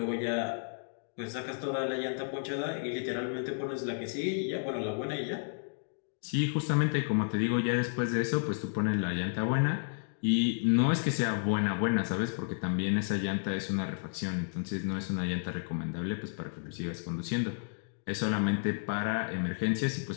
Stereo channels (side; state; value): right; silent; digital silence